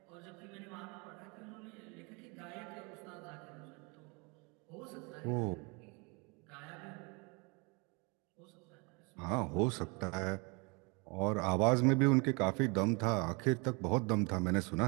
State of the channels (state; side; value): quieter; left; 30.2 dB